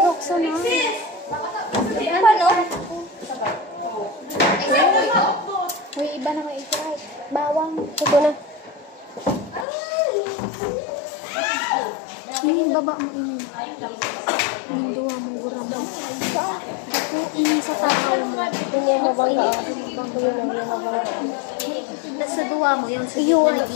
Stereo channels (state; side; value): drops out; right; at 9.7 s